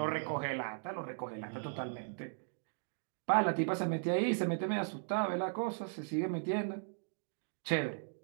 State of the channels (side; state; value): left; silent; digital silence